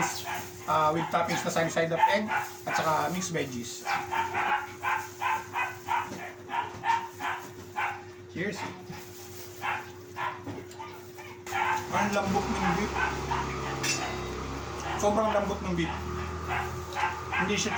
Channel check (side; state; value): both; identical; correlation 1.00